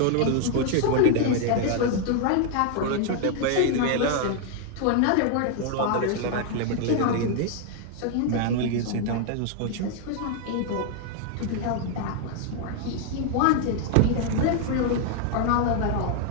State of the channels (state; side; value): different; both; correlation 0.00